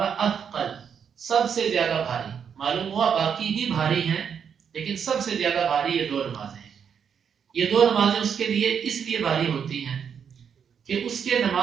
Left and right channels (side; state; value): left; quieter; 7.4 dB